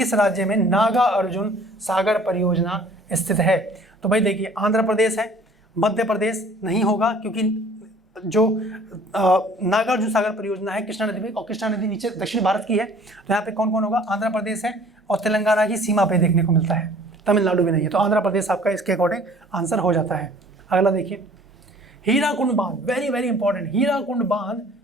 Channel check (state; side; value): normal; both; correlation 0.52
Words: राज्य में नागा अर्जुन सागर परियोजना स्थित है? तो भाई देखिए, आंध्र प्रदेश है, मध्य प्रदेश नहीं होगा क्योंकि जो नागार्जुन सागर परियोजना है कृष्णा नदी में, और कृष्णा नदी नीचे दक्षिण भारत की है। तो यहाँ पे कौन कौन होगा? आंध्र प्रदेश है, और तेलंगाना की सीमा पे देखने को मिलता है, तमिलनाडु भी नहीं है। तो आंध्र प्रदेश आपका इसके अकॉर्डिंग आंसर हो जाता है। अगला देखिए, हीराकुंड बांध, वेरी वेरी इंपॉर्टेंट। हीराकुंड बांध